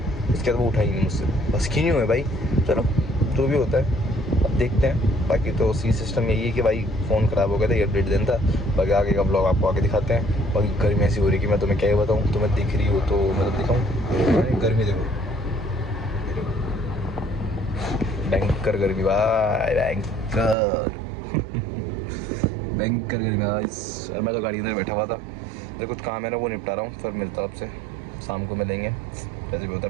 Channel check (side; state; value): left; drops out; at 20.6 s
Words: इसके बाद वो उठा ही नहीं मुझसे, बस की नहीं हुए भाई। चलो जो भी होता है अब देखते हैं। बाकी तो सी सिस्टम यही है कि भाई फ़ोन ख़राब हो गया था, ये अपडेट देना था। बाकी आगे का ब्लॉग आपको आगे दिखाते हैं। बाकी गर्मी ऐसी हो रही कि मैं तुम्हें क्या ही बताऊँ, तुम्हें दिख रही हो तो मतलब दिखाऊँ। गर्मी देखो, भयंकर गर्मी भाई, भयंकर भयंकर गर्मी भाई। और मैं तो गाड़ी अंदर बैठा हुआ था, मेरे कुछ काम है ना वो निपटा रहा हूँ, फिर मिलता हूँ आपसे शाम को मिलेंगे। जैसे भी होता